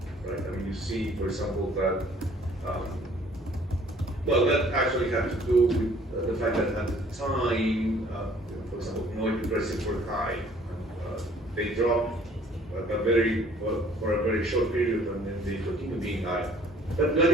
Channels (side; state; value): both; normal; correlation 0.56